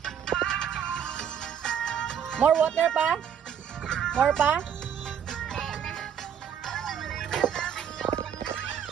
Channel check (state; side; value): quieter; left; 8.4 dB